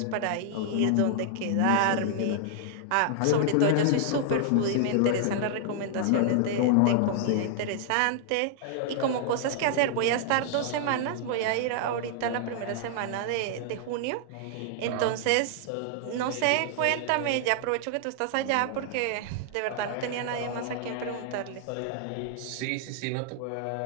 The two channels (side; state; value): both; different; correlation -0.01